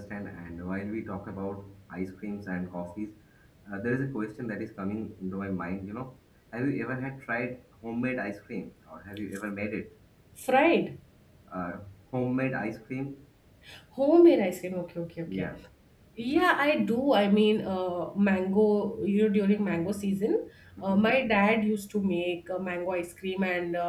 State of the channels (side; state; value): both; identical; correlation 1.00